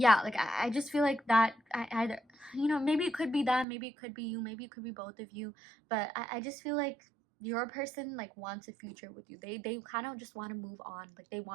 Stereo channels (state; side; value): drops out; left; at 3.7 s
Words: like I just feel like that I either, you know, maybe it could be that, maybe it could be you, maybe it could be both of you, but I just feel like your person like wants a future with you. They kind of just want to move on. Like they